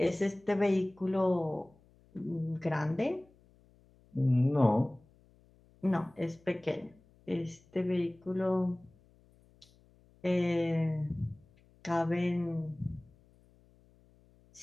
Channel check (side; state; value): left; noise; hum, 30 dB below the sound